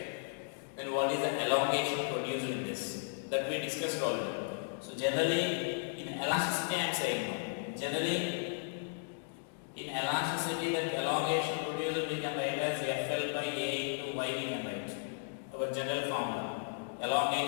Then what is the elongation produced in this? That we discussed already. So generally in elasticity I am saying no. Generally in elasticity that elongation produced we can write as FL by A into Y we can write. Our general formula.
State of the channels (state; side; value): silent; right; digital silence